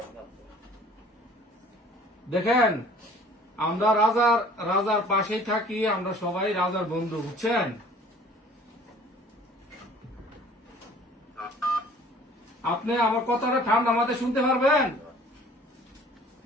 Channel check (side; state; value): both; normal; correlation 0.51